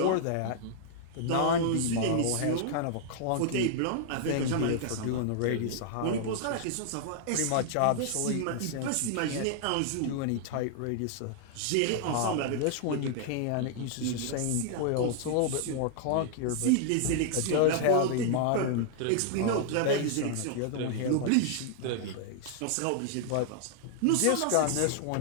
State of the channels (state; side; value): different; both; correlation -0.01